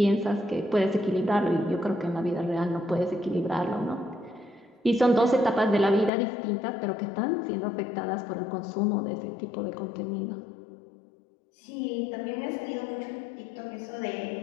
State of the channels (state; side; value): drops out; right; at 6.1 s